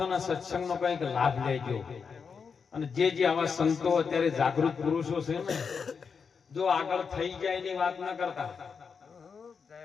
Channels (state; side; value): quieter; right; 5.8 dB